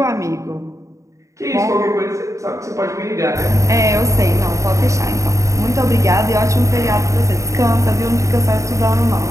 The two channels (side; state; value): left; late; 0.15 ms